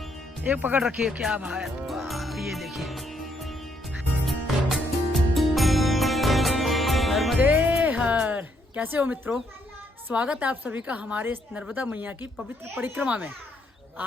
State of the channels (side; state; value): both; normal; correlation 0.73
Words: एक पकड़ रखिए, क्या भाई ये देखिए। नर्मदे हर। कैसे हो मित्रों? स्वागत है आप सभी का हमारे इस नर्मदा मैया की पवित्र परिक्रमा में।